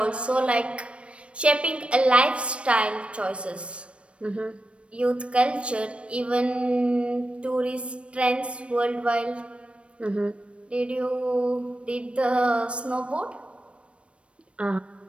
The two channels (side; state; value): left; late; 0.060 ms